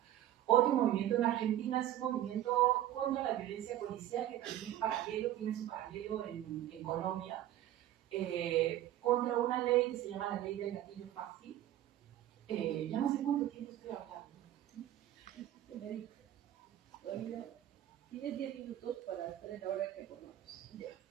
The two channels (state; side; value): quieter; left; 12.8 dB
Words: Otro movimiento en Argentina es un movimiento contra la violencia policial, que también tiene su paralelo en Colombia, contra una ley que se llama la ley del gatillo fácil. Ya no sé cuánto tiempo estoy hablando. Tienes 10 minutos para estar en la hora que pongamos. Ya.